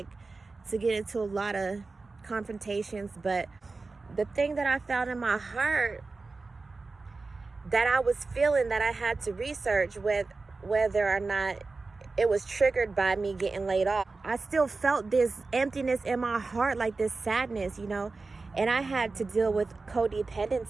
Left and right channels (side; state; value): left; quieter; 3.8 dB